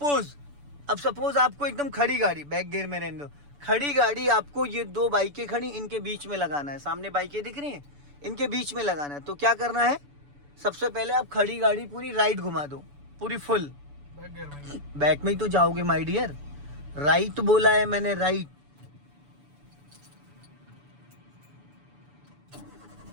आपको एकदम खड़ी गाड़ी, बैक गियर में रहने दो, खड़ी गाड़ी आपको ये 2 बाइकें खड़ी, इनके बीच में लगाना है। सामने बाइकें दिख रही हैं, इनके बीच में लगाना है। तो क्या करना है, सबसे पहले आप खड़ी गाड़ी पूरी राइट घुमा दो, पूरी फुल। बैक में ही तो जाओगे माय डियर, राइट बोला है मैंने, राइट।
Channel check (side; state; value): left; late; 7.0 ms